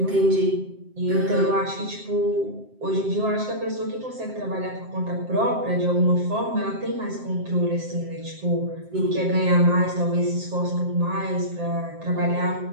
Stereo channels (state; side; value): late; left; 7.6 ms